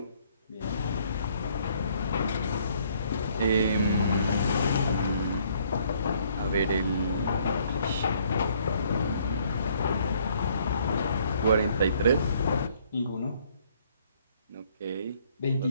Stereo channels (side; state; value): both; inverted; correlation -0.64